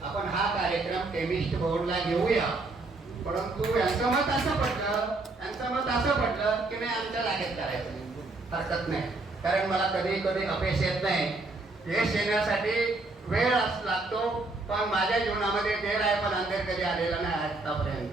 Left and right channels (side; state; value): left; quieter; 3.3 dB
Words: आपण हा कार्यक्रम केमिस्ट बोर्डला घेऊया, परंतु यांचं मत असं पडलं की नाही आमच्या जागेत करायचं हरकत नाही, कारण मला कधी कधी अपयश येत नाही. यश येण्यासाठी वेळ लागतो, पण माझ्या जीवनामध्ये देर आहे पण अंधेर कधी आलेला नाही आतापर्यंत.